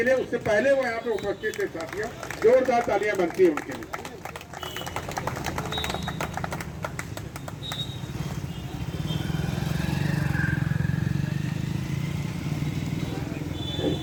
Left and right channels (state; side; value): identical; both; correlation 1.00